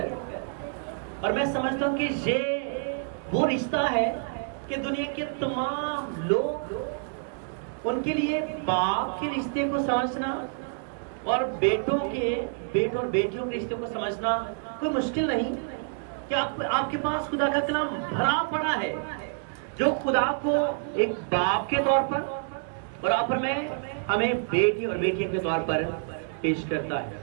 اور میں سمجھتا ہوں کہ یہ وہ رشتہ ہے کہ دنیا کے تمام لوگ ان کے لیے باپ کے رشتے کو سمجھنا اور بیٹوں اور بیٹیوں کے رشتے کو سمجھنا کوئی مشکل نہیں. کہ آپ کے پاس خدا کا کلام بھرا پڑا ہے جو خدا کو ایک باپ کے طور پر اور آپ پر میں ہمیں بیٹی اور بیٹیوں کے طور پر پیش کرتا ہے.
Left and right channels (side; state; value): left; silent; digital silence